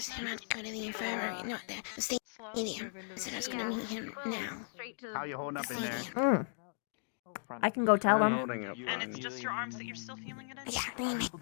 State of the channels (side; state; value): right; silent; digital silence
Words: him I'd go to the infirmary, not the stadium. I said I was gonna move him now. How you holding up in there? I can go tell him. and it's just your arms that you're still feeling it in?